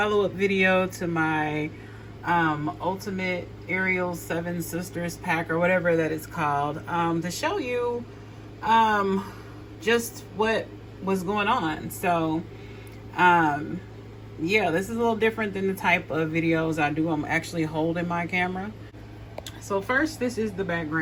video to my ultimate Ariel 7 Sisters pack, or whatever that it's called, to show you just what was going on. So yeah, this is a little different than the type of videos I do. I'm actually holding my camera. So first, this is the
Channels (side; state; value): both; identical; correlation 1.00